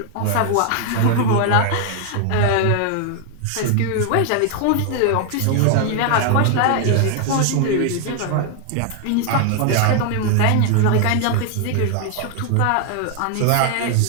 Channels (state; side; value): different; both; correlation 0.00